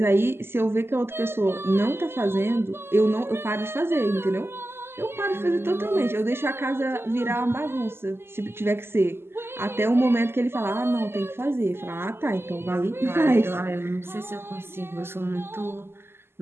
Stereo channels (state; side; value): late; left; 0.12 ms